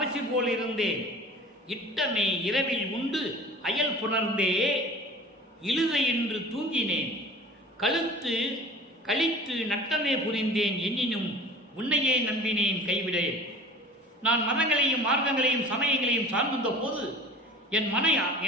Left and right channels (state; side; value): normal; both; correlation 0.42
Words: போல் இருந்தேன். இட்டமே இரவில் உண்டு அயல் புணர்ந்தே இழுதை என்று தூங்கினேன். கழுத்து கழித்து நட்டமே புரிந்தேன் எண்ணினும் உன்னையே நம்பினேன் கைவிடேன். நான் மதங்களையும் மார்க்கங்களையும் சமயங்களையும் சார்ந்திருந்த போது என்